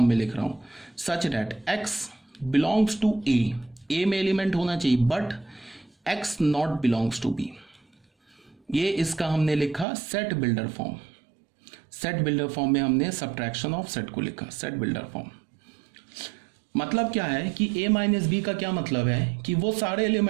में लिख रहा हूं, such that X belongs to A में एलिमेंट होना चाहिए but X not belongs to B. ये इसका हमने लिखा set builder form. Set builder form में हमने सब्ट्रैक्शन ऑफ सेट को लिखा, सेट बिल्डर फॉर्म। मतलब क्या है कि ए माइनस बी का क्या मतलब है कि वो सारे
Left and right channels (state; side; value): drops out; left; at 9.9 s